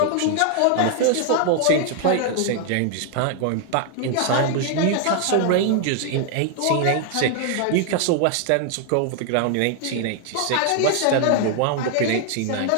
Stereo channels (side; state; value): both; different; correlation 0.00